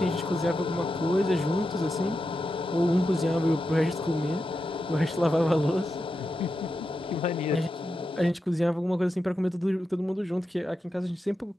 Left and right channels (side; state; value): both; normal; correlation 0.88